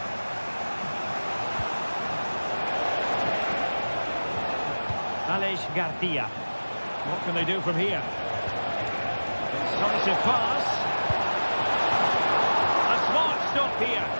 Alex Garcia. What can they do from here? Decisive pass. A smart stop here.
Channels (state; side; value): inverted; both; correlation -1.00